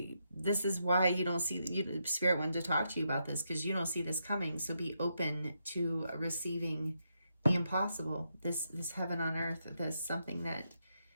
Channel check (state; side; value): inverted; both; correlation -0.82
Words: This is why you don't see, Spirit wanted to talk to you about this, because you don't see this coming. So be open to receiving the impossible, this heaven on earth, this something that,